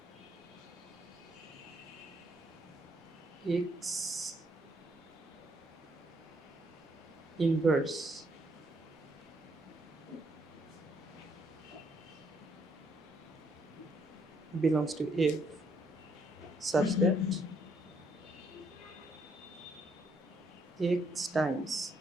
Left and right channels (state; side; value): normal; both; correlation 0.71